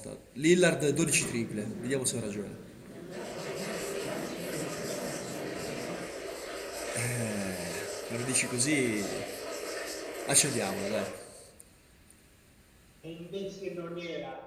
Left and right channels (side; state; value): both; identical; correlation 1.00